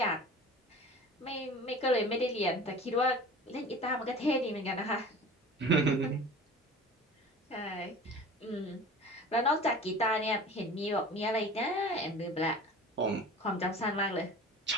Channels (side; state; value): both; normal; correlation 0.39